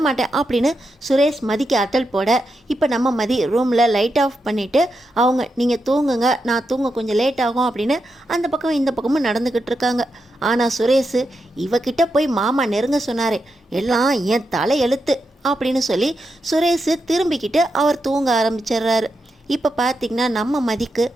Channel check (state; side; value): normal; both; correlation 0.86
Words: மாட்டேன் அப்படின்னு சுரேஷ் மதிக்கு அட்டல் போட, இப்போ நம்ம மதி ரூமில் லைட் ஆஃப் பண்ணிவிட்டு அவங்க, நீங்கள் தூங்குங்க, நான் தூங்க கொஞ்சம் லேட் ஆகும் அப்படின்னு அந்த பக்கம் இந்த பக்கமும் நடந்துக்கிட்டு இருக்காங்க. ஆனால் சுரேஷ், இவகிட்ட போய் மாமா நெருங்க சொன்னார், எல்லாம் என் தலை எழுத்து அப்படின்னு சொல்லி சுரேஷ் திரும்பிக்கிட்டு அவர் தூங்க ஆரம்பிச்சிடுறாரு. இப்போ பார்த்திங்கன்னா நம்ம மதிக்கு,